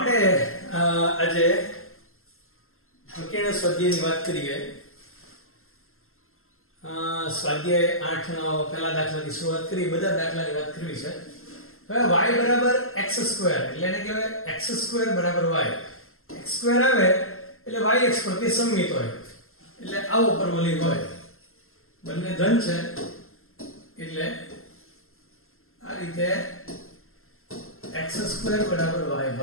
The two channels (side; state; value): right; late; 0.62 ms